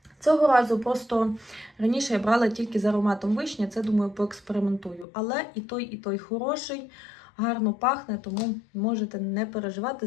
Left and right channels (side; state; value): right; drops out; at 5.1 s